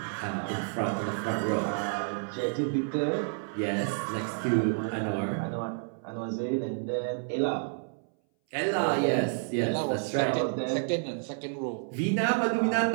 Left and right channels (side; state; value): left; silent; 58 dB below the other